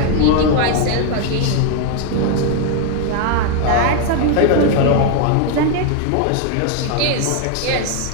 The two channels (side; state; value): both; different; correlation 0.01